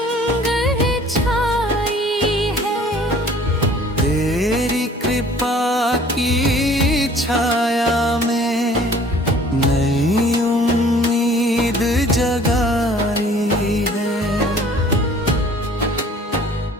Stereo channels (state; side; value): normal; both; correlation 0.52